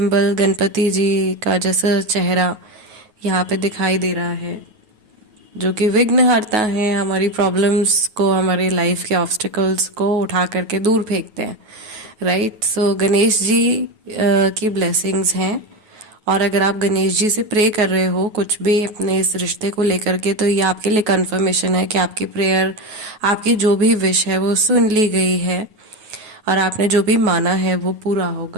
गणपति जी का जैसा चेहरा यहाँ पे दिखाई दे रहा है, जो कि विघ्नहर्ता हैं, हमारी प्रॉब्लम्स को, हमारे लाइफ के ऑब्स्टिकल्स को उठा करके दूर फेंकते हैं। राइट। सो गणेश जी की ब्लेसिंग्स हैं। और अगर आप गणेश जी से प्रे कर रहे हो कुछ भी अपने इस रिश्ते को लेकर के, तो ये आपके लिए कंफर्मेशन है कि आपकी प्रेयर, आपकी जो भी विश है वो सुन ली गई है और आपने जो भी माना है वो पूरा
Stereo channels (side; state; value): left; late; 9.4 ms